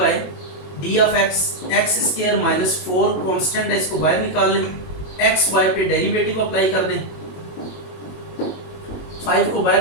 d of x, x square minus 4 constant है, इसको बाहर निकाल लें, एक्स वाई पे डेरिवेटिव अप्लाई कर दें, 5 को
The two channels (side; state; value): right; late; 22 ms